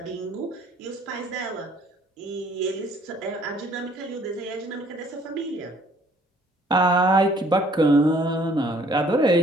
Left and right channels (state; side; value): normal; both; correlation 0.59